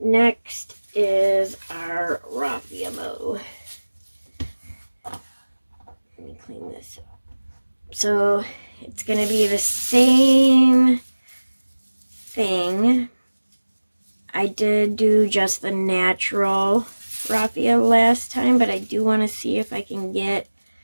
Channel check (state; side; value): inverted; both; correlation -1.00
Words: is our raffia bow. Let me clean this up. So it's going to be the same thing. I did do just the natural raffia last time, but I do want to see if I can get